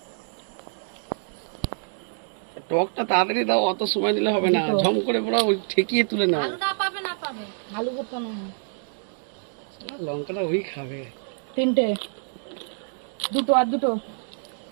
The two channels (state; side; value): silent; left; digital silence